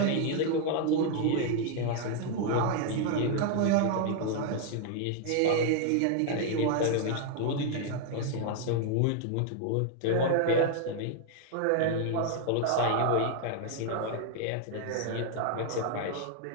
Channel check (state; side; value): different; both; correlation 0.00